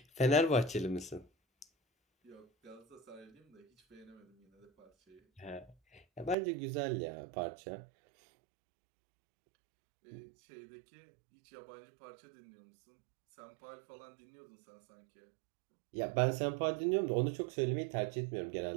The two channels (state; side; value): drops out; left; at 6.4 s